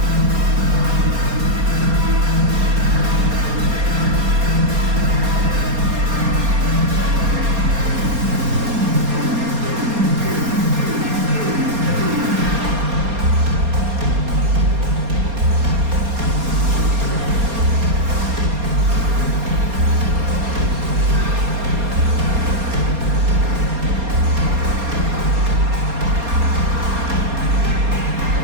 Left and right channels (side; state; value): left; late; 4.3 ms